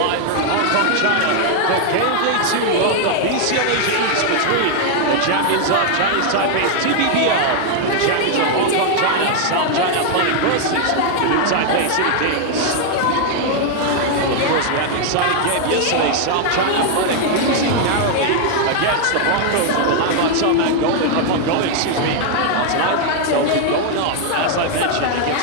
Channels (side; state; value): both; different; correlation 0.00